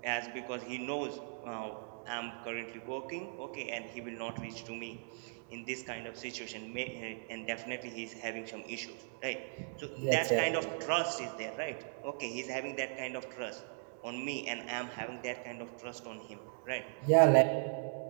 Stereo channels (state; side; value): silent; left; digital silence